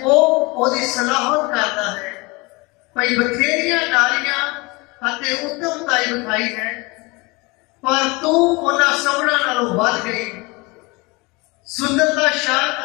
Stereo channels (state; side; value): quieter; right; 25.6 dB